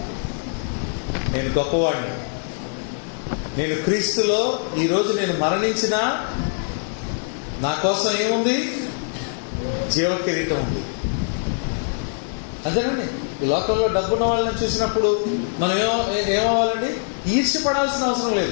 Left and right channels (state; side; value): silent; right; digital silence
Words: నేను గొప్పవాడిని. నేను క్రీస్తులో ఈరోజు నేను మరణించినా నా కోసం ఏముంది? జీవ కిరీటం ఉంది. అంతేనండి. ఈ లోకంలో డబ్బున్న వాళ్ళని చూసినప్పుడు మనం ఏమవ్వాలండి? ఈర్ష్యపడాల్సిన అవసరం